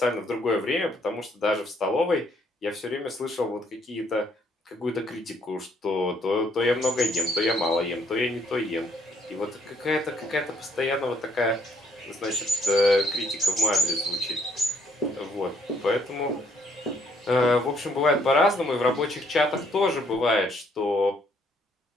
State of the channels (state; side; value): normal; both; correlation 0.67